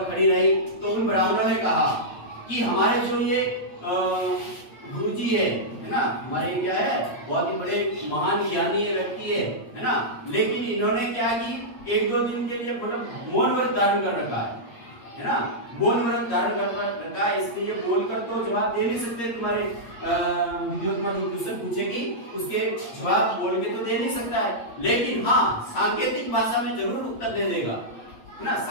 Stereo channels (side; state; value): right; late; 8.6 ms